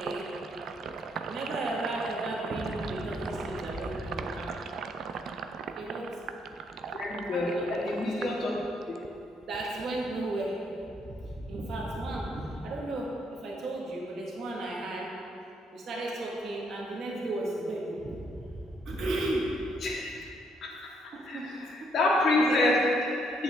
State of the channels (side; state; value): both; normal; correlation 0.72